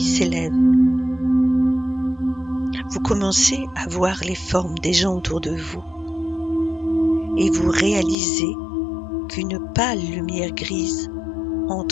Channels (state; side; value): drops out; right; at 8.2 s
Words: s'élève. Vous commencez à voir les formes des gens autour de vous et vous réalisez qu'une pâle lumière grise